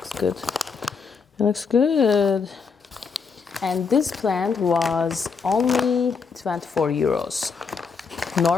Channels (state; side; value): quieter; right; 5.4 dB